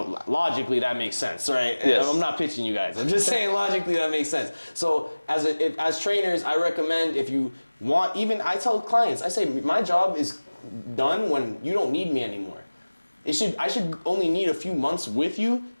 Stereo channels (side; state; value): both; inverted; correlation -1.00